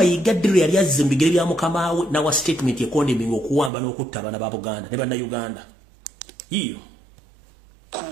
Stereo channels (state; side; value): drops out; left; at 3.7 s